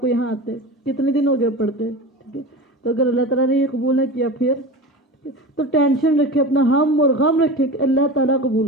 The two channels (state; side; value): normal; both; correlation 0.30